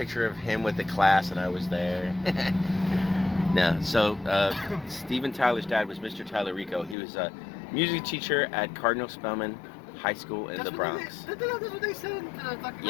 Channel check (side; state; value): right; drops out; at 7.0 s